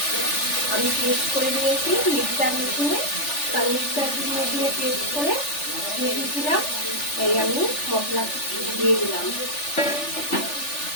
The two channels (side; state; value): right; late; 3.4 ms